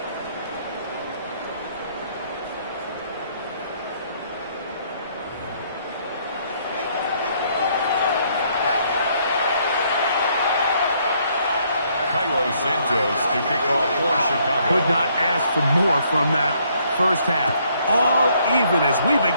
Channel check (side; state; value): both; inverted; correlation -0.68